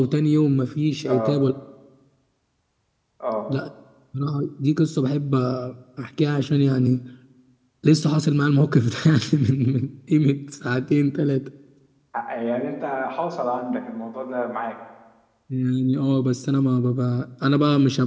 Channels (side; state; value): both; identical; correlation 1.00